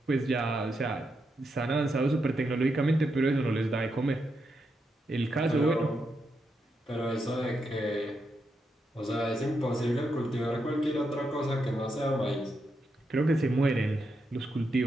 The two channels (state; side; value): normal; both; correlation 0.83